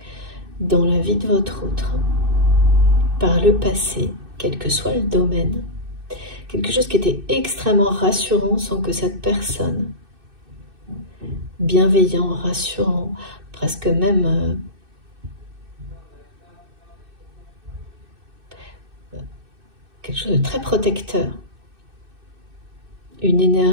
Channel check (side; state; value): left; late; 2.6 ms